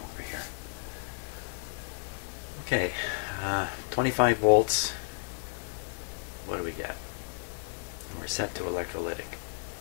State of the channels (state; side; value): silent; right; digital silence